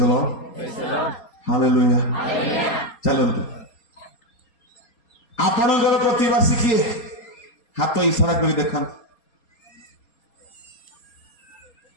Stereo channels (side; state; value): right; late; 4.3 ms